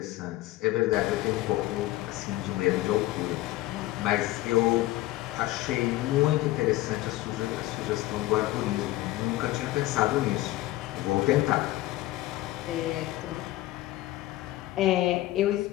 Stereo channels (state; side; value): quieter; right; 16.8 dB